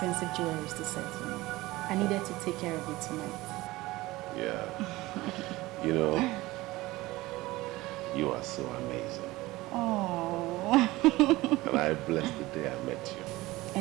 jewelry to sell to me. I needed to take care of it tonight.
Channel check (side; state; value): left; quieter; 19.2 dB